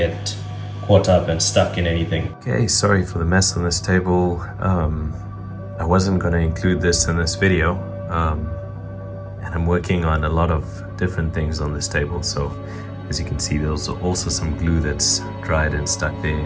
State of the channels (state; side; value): identical; both; correlation 1.00